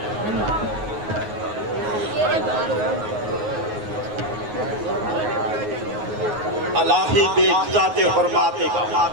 अलाही बेइज्जत हुर्माते का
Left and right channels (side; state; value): left; late; 9.5 ms